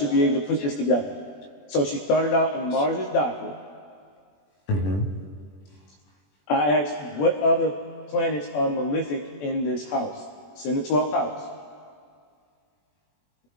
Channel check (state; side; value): late; right; 21 ms